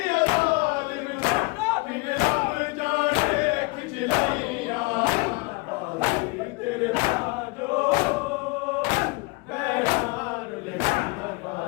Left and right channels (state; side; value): quieter; right; 26.8 dB